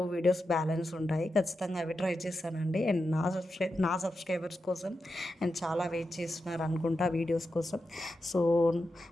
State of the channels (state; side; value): normal; both; correlation 0.89